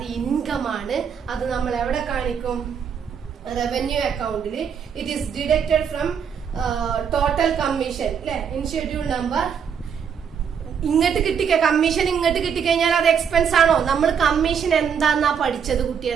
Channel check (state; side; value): quieter; left; 7.3 dB